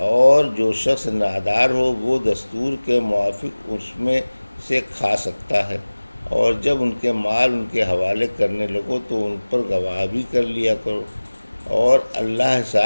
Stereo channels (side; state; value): both; inverted; correlation -1.00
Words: جو شخص نادار ہو وہ دستور کے موافق اس میں سے کھا سکتا ہے، اور جب ان کے مال ان کے حوالے کرنے لگو تو ان پر گواہ بھی کر لیا کرو، اور اللہ